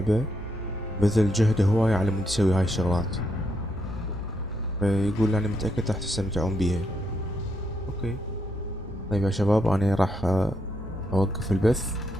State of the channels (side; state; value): both; normal; correlation 0.78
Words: بذل جهده هواية على مود يسوي هاي الشغلات، فيقول أنا متأكد راح تستمتعون بيها. أوكي طيب يا شباب، أنا راح أوقف البث